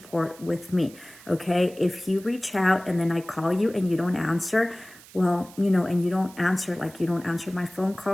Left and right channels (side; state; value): right; noise; hiss, 21 dB below the sound